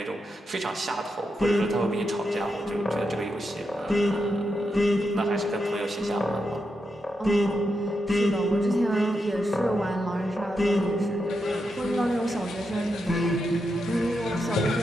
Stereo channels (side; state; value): both; normal; correlation 0.85